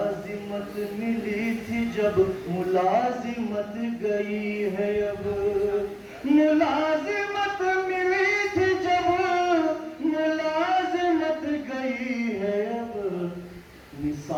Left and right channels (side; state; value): both; identical; correlation 1.00